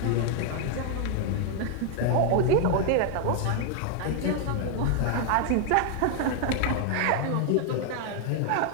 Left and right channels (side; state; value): both; different; correlation 0.00